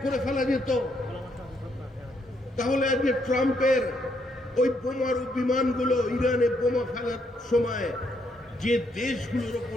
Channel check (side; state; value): both; normal; correlation 0.74